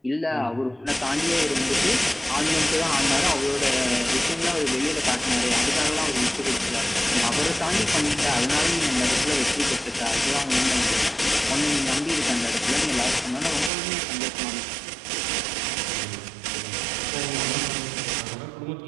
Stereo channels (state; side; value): drops out; left; at 13.7 s